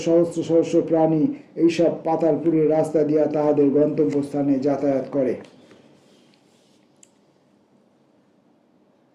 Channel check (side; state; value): both; identical; correlation 1.00